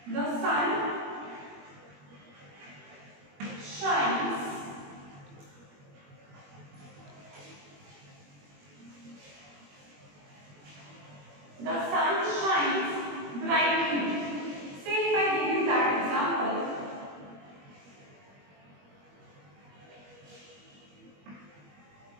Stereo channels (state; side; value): late; left; 21 ms